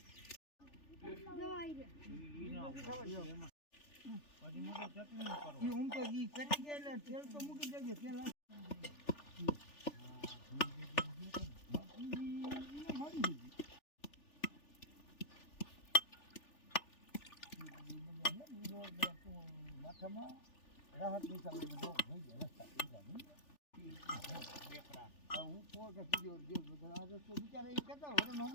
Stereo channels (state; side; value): late; right; 3.4 ms